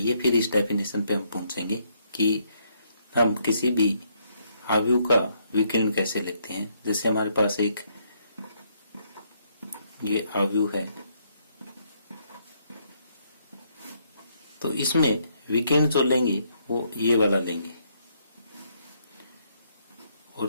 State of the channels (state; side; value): inverted; both; correlation -0.72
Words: फिर इस डेफिनेशन पे हम पहुंचेंगे कि हम किसी भी अवयव का विकर्ण कैसे लेते हैं। जैसे हमारे पास एक ये अवयव है, तो इसमें विकर्ण जो लेंगे वो ये वाला लेंगे,